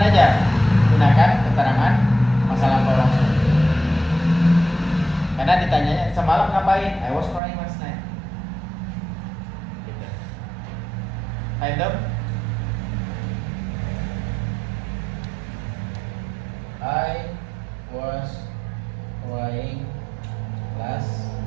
aja, gunakan keterangan masa lampau langsung. Karena ditanyanya semalam ngapain? I was crying last night. Gitu. Item. I was crying last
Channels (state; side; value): drops out; left; at 7.4 s